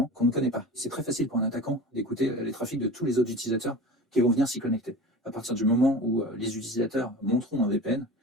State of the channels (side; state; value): both; normal; correlation 0.34